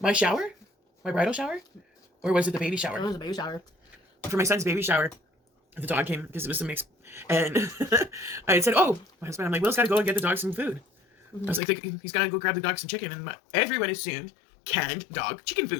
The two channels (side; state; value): right; drops out; at 11.6 s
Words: shower, my bridal shower. Or was it the baby shower? It was a baby shower. For my son's baby shower, the dog came because it was a mix. And I had said, oh, my husband, I'm like, Will's got to go and get the dog some food. I was like, he's got to go grab the dog some chicken. And everyone assumed canned dog chicken